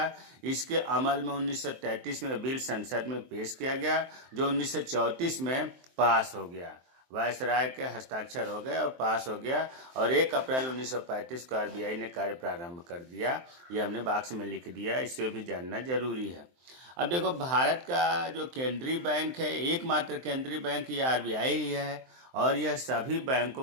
इसके अमल में 1933 में बिल संसद में पेश किया गया जो 1934 में पास हो गया। वायसराय के हस्ताक्षर हो गए और पास हो गया, और 1 अप्रैल 1935 को आरबीआई ने कार्य प्रारंभ कर दिया। ये हमने बॉक्स में लिख दिया, इससे भी जानना जरूरी है। अब देखो, भारत का जो केंद्रीय बैंक है, एकमात्र केंद्रीय बैंक ये आरबीआई ही है, और यह सभी बैंकों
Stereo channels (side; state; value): left; late; 23 ms